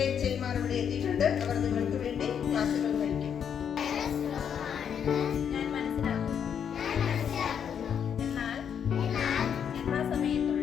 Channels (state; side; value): quieter; right; 8.0 dB